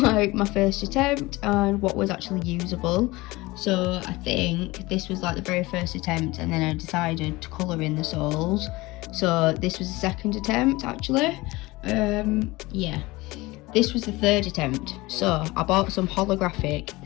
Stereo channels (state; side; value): quieter; right; 21.1 dB